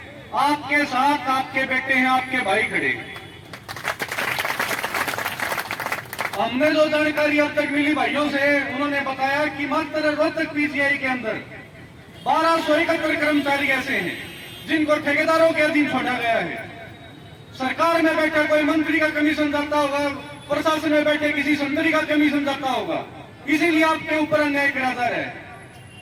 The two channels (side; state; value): both; identical; correlation 1.00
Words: आपके साथ आपके बेटे हैं, आपके भाई खड़े हैं। हमने जो जानकारी अब तक मिली भाइयों से, उन्होंने बताया कि मात्र रोहतक पीजीआई के अंदर 1271 कर्मचारी ऐसे हैं जिनको ठेकेदारों के अधीन छोड़ा गया है। सरकार में बैठा कोई मंत्री का कमीशन जाता होगा, प्रशासन में बैठे किसी संतरी का कमीशन जाता होगा, इसीलिए आपके ऊपर अन्याय किया जा रहा है।